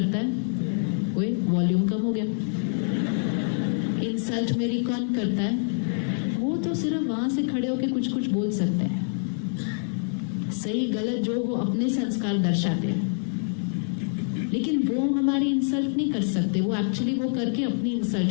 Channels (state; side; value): silent; right; 55 dB below the other